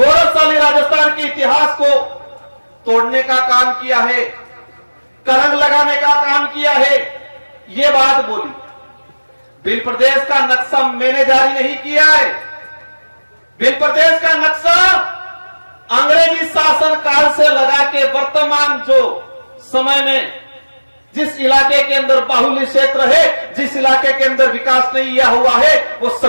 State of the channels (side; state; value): both; inverted; correlation -1.00